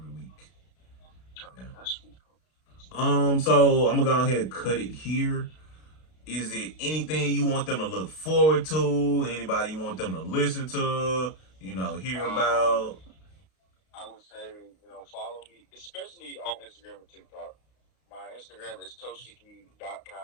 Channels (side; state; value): right; late; 32 ms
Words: week. Okay, Yeah. that's sweet. So I'm gonna go ahead and cut it here. Is it anything you want them to look forward to? Anybody you want them to listen to? Hear Um, about? I would say, follow me, especially on Instagram and TikTok. My Instagram is